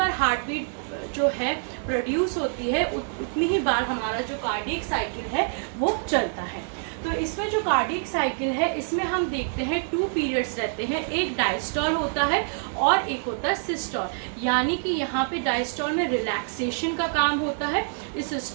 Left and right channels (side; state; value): left; silent; 56 dB below the other